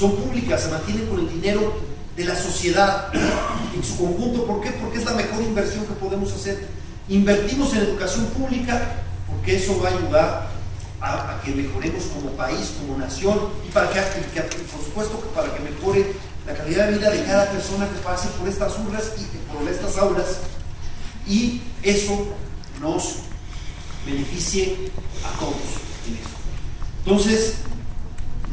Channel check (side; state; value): both; identical; correlation 1.00